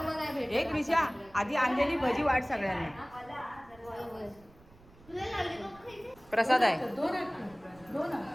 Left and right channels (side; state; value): right; noise; rumble, 25 dB below the sound